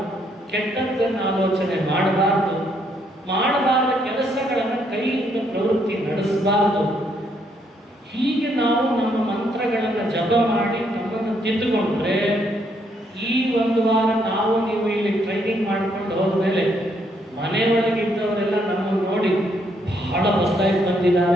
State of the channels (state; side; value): normal; both; correlation 0.72